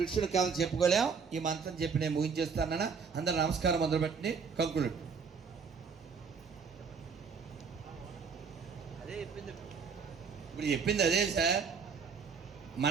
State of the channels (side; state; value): left; quieter; 5.7 dB